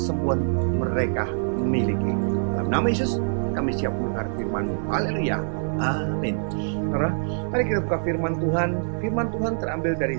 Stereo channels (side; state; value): left; silent; digital silence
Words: mereka memiliki. Dalam nama Yesus kami siap mendengar firman-Mu. Haleluya, amin. Saudara, mari kita buka firman Tuhan. Firman Tuhan terambil dari